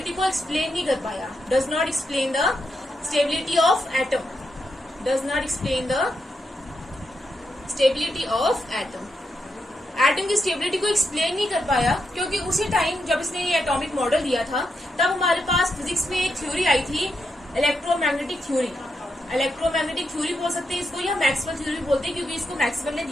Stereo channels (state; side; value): normal; both; correlation 0.83